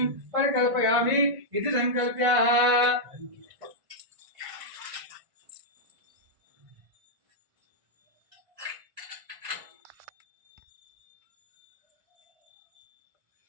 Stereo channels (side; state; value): left; late; 1.5 ms